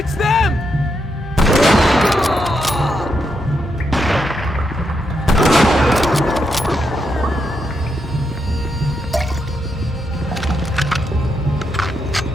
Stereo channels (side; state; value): both; normal; correlation 0.81